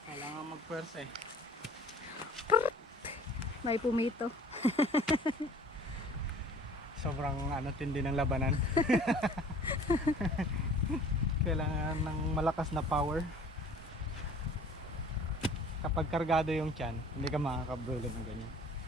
Kailangan magpwersa eh. May pumito. Sobrang tindi ng labanan. Kailangan ng malakas na power. Kapag kargado yung tiyan, hindi ka makakabulo ng ganyan.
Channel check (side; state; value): both; normal; correlation 0.49